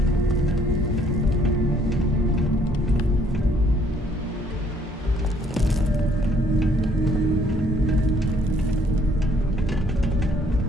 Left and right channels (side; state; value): both; normal; correlation 0.63